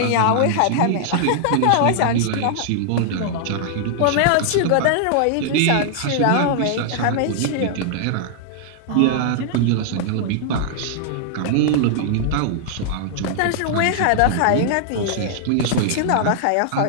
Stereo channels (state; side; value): different; both; correlation -0.01